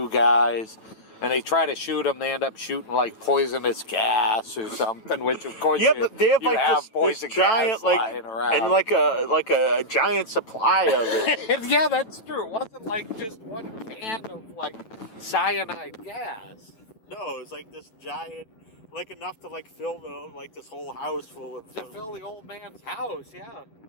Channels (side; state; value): right; late; 9.1 ms